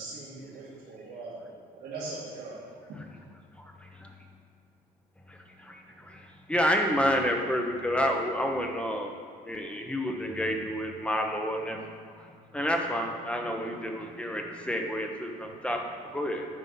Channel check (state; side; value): normal; both; correlation 0.67